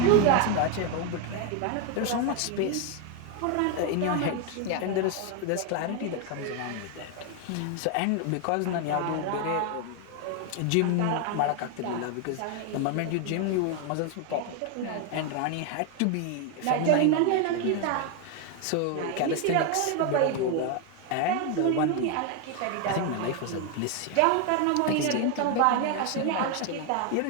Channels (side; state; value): both; different; correlation 0.01